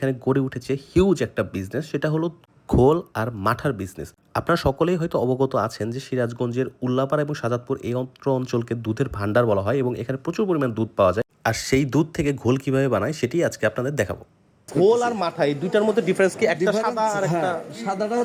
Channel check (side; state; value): both; identical; correlation 1.00